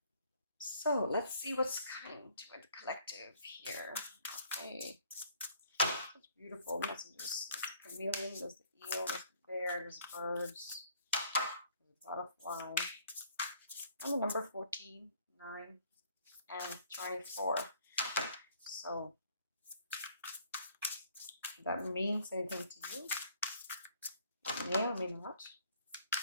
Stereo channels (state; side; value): inverted; both; correlation -0.60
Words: So let's see what's coming to the collective here. Okay, such beautiful messages. There's the chameleon, there's the eel, there's the bear, there's birds, there's a butterfly, and the number 14, 9, and 24. So if that means anything to you, it may or may not.